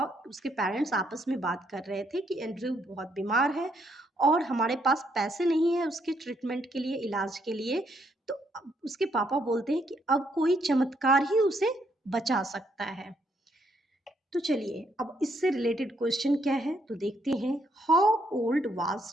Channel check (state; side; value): normal; both; correlation 0.73